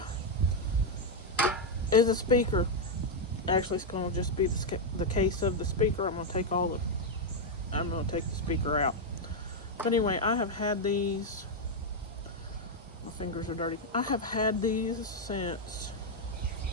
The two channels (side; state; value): both; normal; correlation 0.00